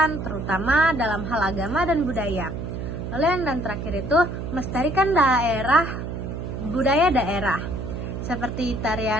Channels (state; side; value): noise; right; hum, 6 dB below the sound